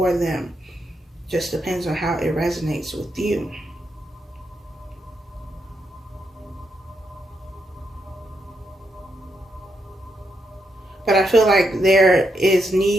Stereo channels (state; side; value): normal; both; correlation 0.81